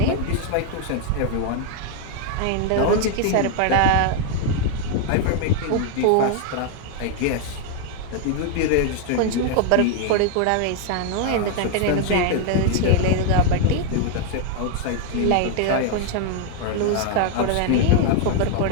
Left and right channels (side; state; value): both; different; correlation 0.00